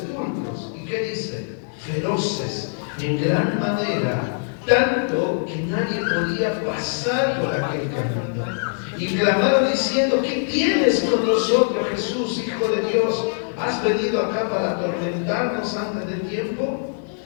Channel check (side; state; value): right; silent; digital silence